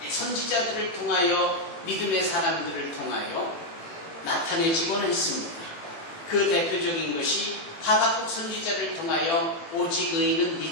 선지자들을 통하여 믿음의 사람들을 통하여 나타내지곤 했습니다. 그 대표적인 것이 하박국 선지자를 통하여 오직 의인은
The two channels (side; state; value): right; late; 18 ms